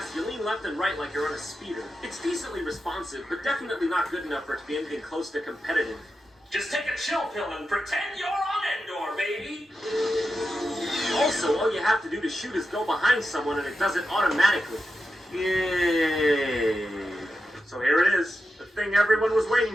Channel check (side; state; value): both; normal; correlation 0.89